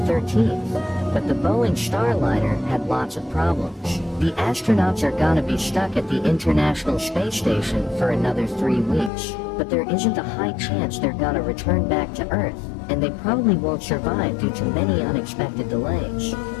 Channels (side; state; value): right; drops out; at 9.1 s